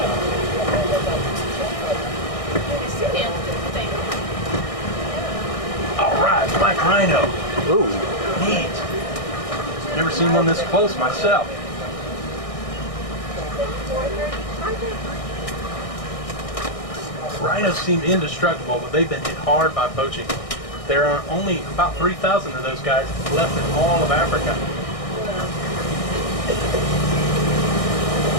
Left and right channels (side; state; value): right; late; 1.6 ms